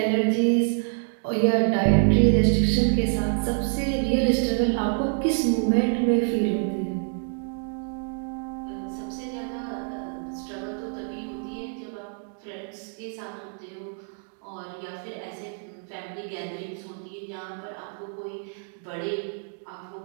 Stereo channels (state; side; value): silent; left; 60 dB below the other